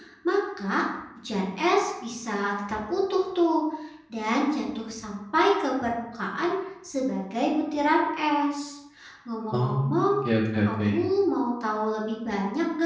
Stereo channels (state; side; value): identical; both; correlation 1.00